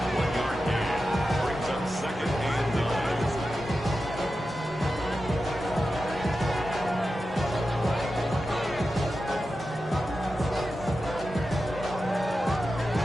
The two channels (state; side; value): normal; both; correlation 0.92